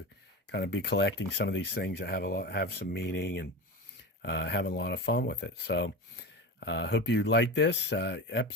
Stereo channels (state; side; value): normal; both; correlation 0.26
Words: kind of be collecting some of these things that have some meaning, and having a lot of fun with it. So hope you liked this